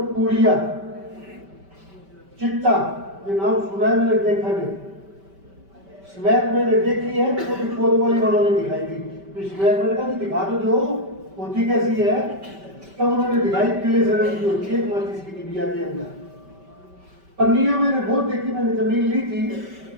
पुड़िया, चिट्टा, ये नाम सुना है, मैंने देखा नहीं। स्मैक मैंने देखी है, तो भी वाली वालों ने दिखाई थी, तो स्मैक मैंने कहा दिखा तो दो होती कैसी है, तब उन्होंने दिखाई पीले से रंग की होती है, माचिस की डिबिया के अंदर। पन्नियां मैंने बहुत देखी, मैंने जमीन ली थी,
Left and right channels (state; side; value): late; left; 5.2 ms